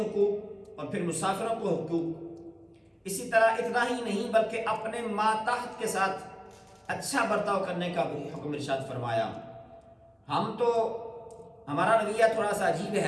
اور پھر مسافروں کے حقوق۔ اسی طرح اتنا ہی نہیں بلکہ اپنے ماتحت کے ساتھ اچھا برتاؤ کرنے کا بھی حکم ارشاد فرمایا۔ ہمارا رویہ تھوڑا سا عجیب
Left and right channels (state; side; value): identical; both; correlation 1.00